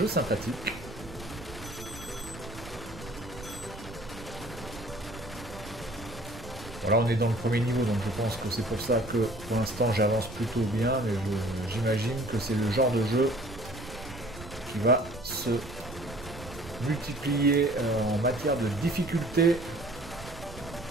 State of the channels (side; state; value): right; noise; rumble, 15 dB below the sound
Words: sympathique. Voilà, on est dans le premier niveau, donc je pense que c'est pour ça que pour l'instant j'avance plutôt bien, mais j'imagine que c'est le genre de jeu qui va se multiplier en matière de difficulté.